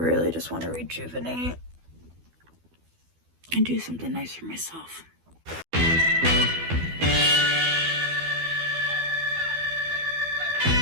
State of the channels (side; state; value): left; late; 12 ms